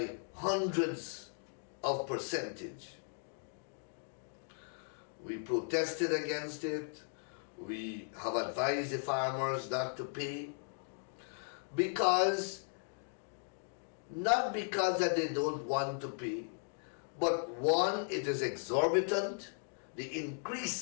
hundreds of percentage. We protested against it. We have advised the farmers not to pay not because that they don't want to pay, but one, it is exorbitant. The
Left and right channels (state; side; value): silent; right; 53 dB below the other